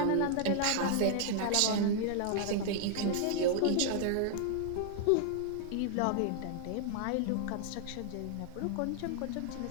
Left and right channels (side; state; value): both; different; correlation -0.01